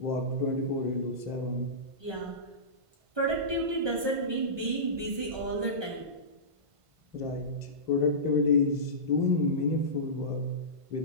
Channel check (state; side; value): late; left; 1.5 ms